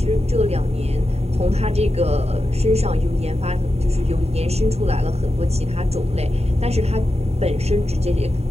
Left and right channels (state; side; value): late; left; 0.30 ms